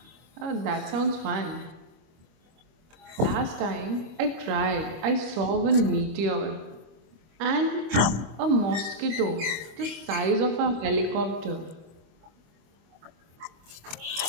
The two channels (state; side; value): late; left; 25 ms